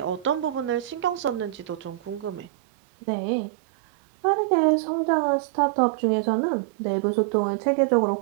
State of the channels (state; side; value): drops out; left; at 2.5 s